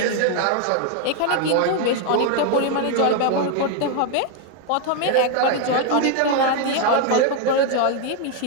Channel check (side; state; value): both; different; correlation 0.01